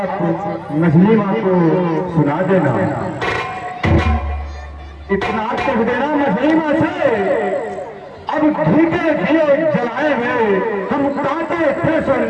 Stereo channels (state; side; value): identical; both; correlation 1.00